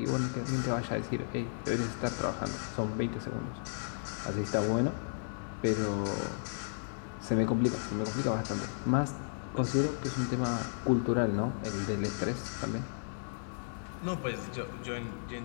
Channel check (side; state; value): right; silent; digital silence